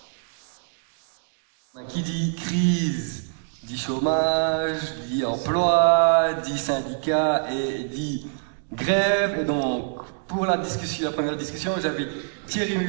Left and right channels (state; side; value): silent; left; digital silence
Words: Qui dit crise, dit chômage, dit emploi, dit syndicat et dit grève. Et donc, pour la première discussion, j'avais Thierry